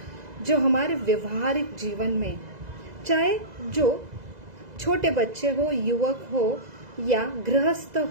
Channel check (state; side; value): late; left; 2.0 ms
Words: जो हमारे व्यवहारिक जीवन में, चाहे जो छोटे बच्चे हो, युवक हो या गृहस्थ